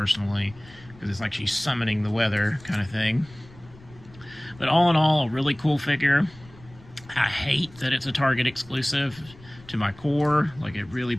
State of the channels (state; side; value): noise; left; rumble, 22 dB below the sound